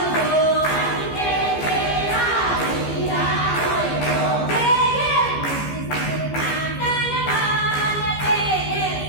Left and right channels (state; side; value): late; right; 15 ms